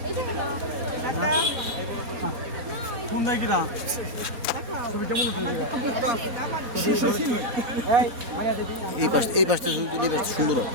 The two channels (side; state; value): left; late; 4.0 ms